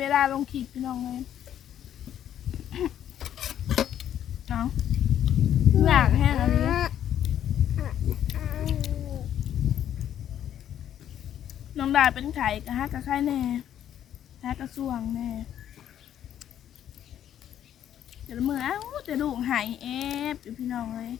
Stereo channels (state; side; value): quieter; right; 10.5 dB